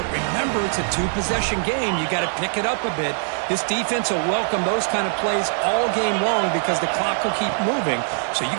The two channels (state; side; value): silent; left; 56 dB below the other